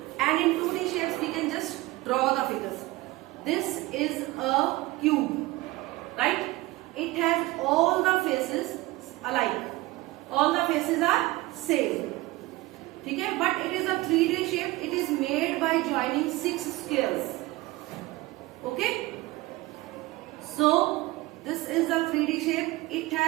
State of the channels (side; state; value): left; quieter; 19.8 dB